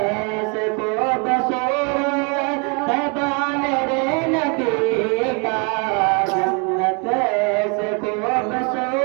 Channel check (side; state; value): left; quieter; 34.8 dB